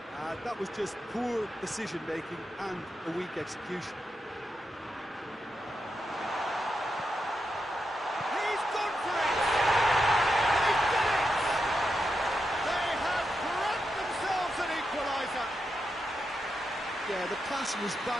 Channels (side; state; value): both; normal; correlation 0.86